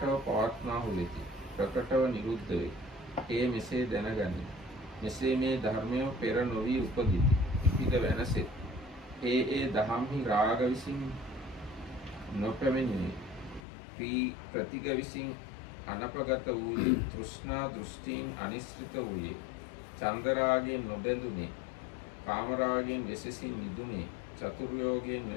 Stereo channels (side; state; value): right; drops out; at 13.6 s